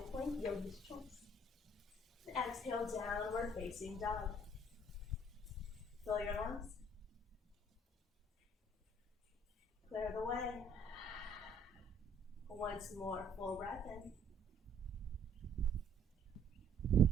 plank, yogi's choice. Exhale, downward facing dog. Fill your lungs. Clear the way. Once more, full breath in.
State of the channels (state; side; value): normal; both; correlation 0.61